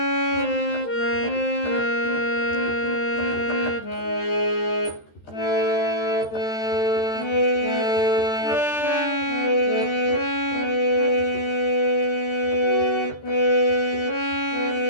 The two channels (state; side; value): late; right; 13 ms